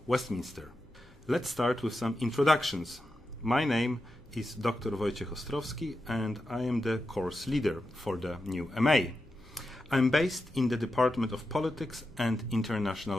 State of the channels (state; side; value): noise; left; hum, 28 dB below the sound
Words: Westminster. Let's start with some introductions. My name is Dr. Wojciech Ostrowski, and I am the course leader for the new MA. I'm based in the Department of Politics and